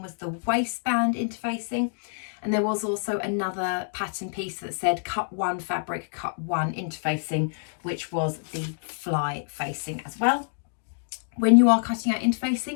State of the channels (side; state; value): right; silent; digital silence